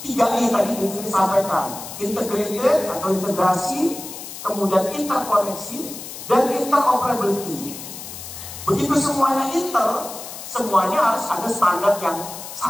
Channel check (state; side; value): noise; left; hiss, 11 dB below the sound